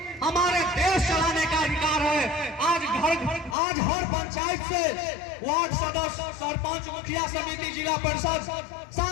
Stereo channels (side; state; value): right; drops out; at 3.6 s